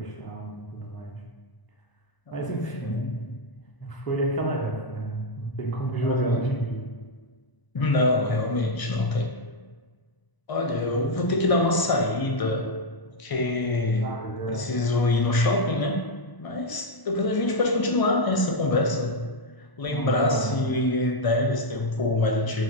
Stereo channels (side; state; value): right; late; 1.0 ms